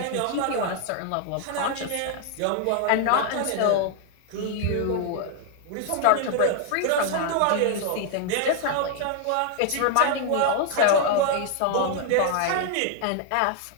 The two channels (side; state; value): both; different; correlation 0.00